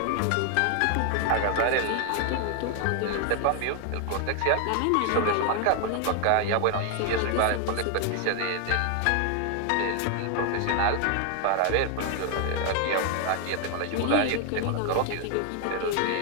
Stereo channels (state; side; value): different; both; correlation 0.00